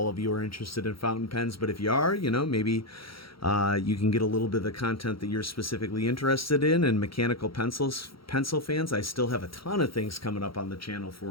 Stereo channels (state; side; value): late; right; 0.75 ms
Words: of you are interested in fountain pens, but if you are, maybe you can get a little bit of the content that you're specifically interested in. And mechanical pencil fans, I still have a ton of things coming up on the channel